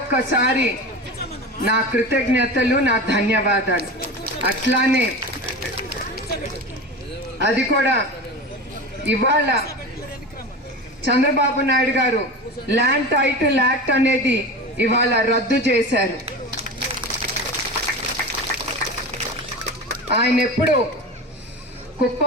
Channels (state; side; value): normal; both; correlation 0.28